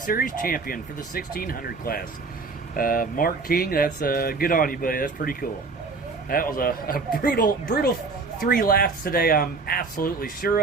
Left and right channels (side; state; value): left; quieter; 4.2 dB